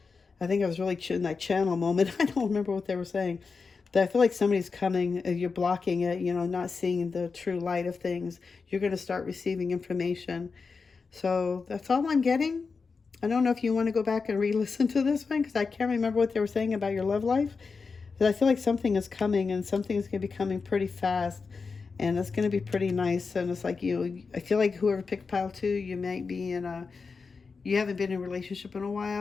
I think I was really in that channel moment. I don't remember what they were saying. But I feel like somebody's coming. You're blocking it, not seeing the true light of things. You're going to start receiving information. So that's all I'm getting. I don't know if you want to go back and re-listen to this one, because I can't remember what they were saying about your love life. But I feel like something is coming, and something is going to be coming pretty fast. And it's going to be pretty nice. And it's like I feel like whoever picked pile 2, you might be you haven't been in a relationship in a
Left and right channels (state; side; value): quieter; right; 4.8 dB